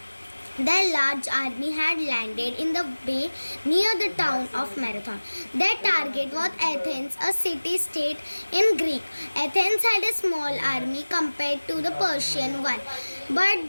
Their large army had landed in the bay near the town of Marathon. Their target was Athens, a city-state in Greek. Athens had a small army compared to the Persian one, but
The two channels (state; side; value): inverted; both; correlation -1.00